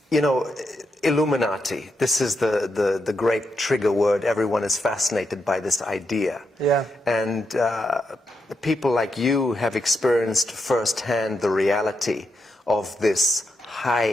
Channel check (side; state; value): both; normal; correlation 0.83